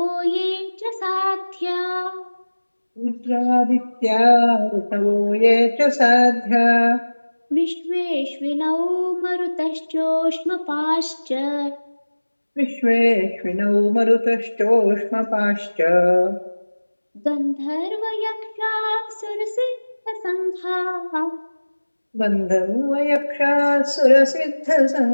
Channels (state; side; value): inverted; both; correlation -1.00